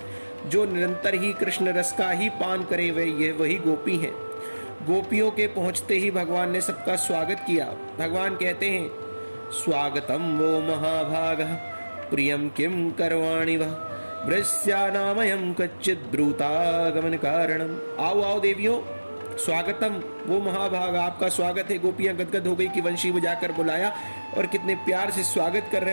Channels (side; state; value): both; inverted; correlation -1.00